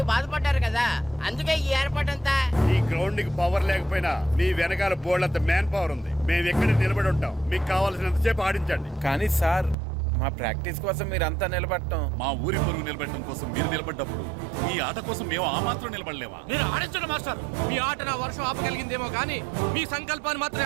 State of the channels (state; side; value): drops out; left; at 9.8 s